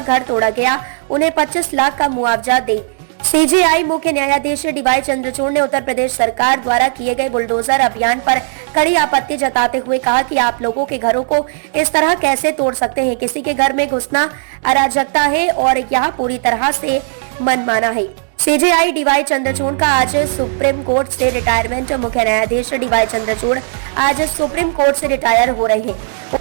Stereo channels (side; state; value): left; silent; digital silence